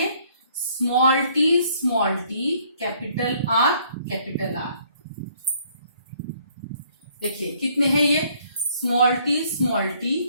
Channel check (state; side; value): inverted; both; correlation -0.63